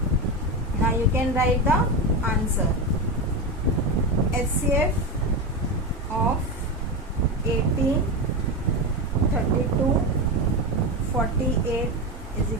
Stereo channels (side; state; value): both; normal; correlation 0.17